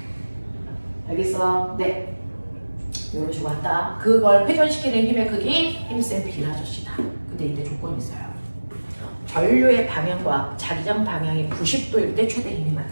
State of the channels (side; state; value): both; inverted; correlation -1.00